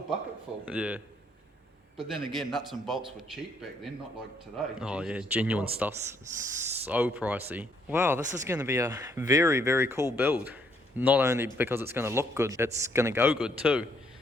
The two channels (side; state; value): both; normal; correlation 0.70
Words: full. Yeah. But then again, nuts and bolts were cheap back then, not like today. Oh Jesus yeah, genuine Christ. stuff's so pricey. Wow, this is going to be a very, very cool build. Not only because it's going to look good, it's going to go good too.